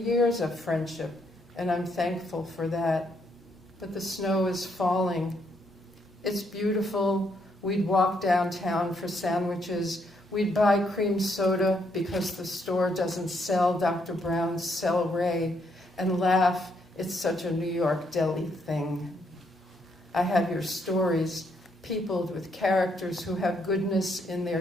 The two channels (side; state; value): both; normal; correlation 0.74